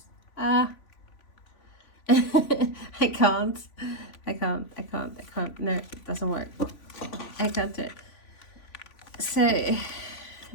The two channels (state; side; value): late; right; 3.5 ms